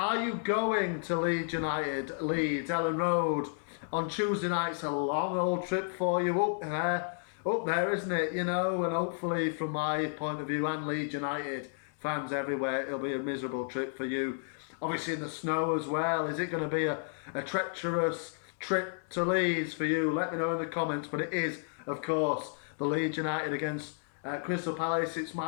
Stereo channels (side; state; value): right; silent; digital silence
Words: you going to Leeds United, Leeds, Ellen Road on Tuesday night? It's a long old trip for you up there, isn't it? You know, and hopefully from my point of view and Leeds United fans everywhere, it'll be a miserable trip for you. Obviously in the snow as well. Is it going to be a treacherous trip to Leeds for you? Let me know in the comments. But it is, of course, the Leeds United against Crystal Palace. It's